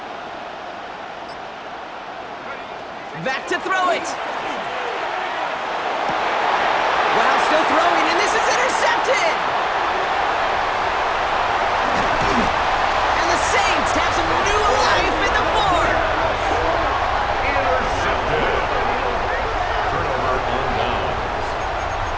Back to throw it. Wow, still throwing, and this is intercepted. And the Saints have some new life in the 4th. Intercepted. Turnover on downs.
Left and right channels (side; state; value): both; identical; correlation 1.00